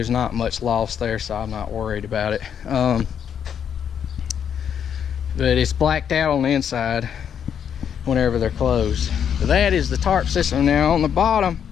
not much loss there, so I'm not worried about it. But it's blacked out on the inside whenever they're closed. So that is the tarp system. Now on the bottom,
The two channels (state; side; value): quieter; right; 8.3 dB